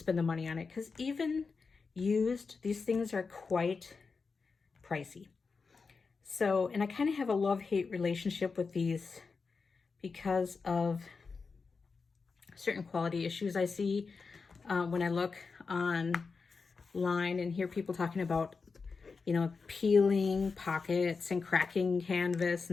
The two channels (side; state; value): right; quieter; 4.7 dB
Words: the money on it, because even used, these things are quite pricey. So, and I kind of have a love-hate relationship with these because of certain quality issues I see when I look online and hear people talking about, you know, peeling pockets and cracking canvas